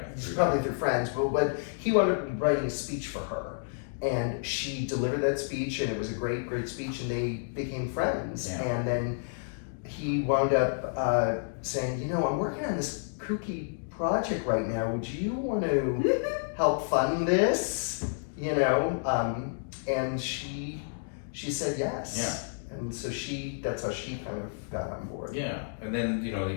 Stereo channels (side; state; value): right; silent; digital silence